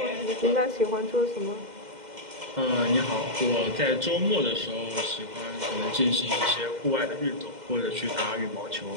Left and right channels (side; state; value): left; late; 2.1 ms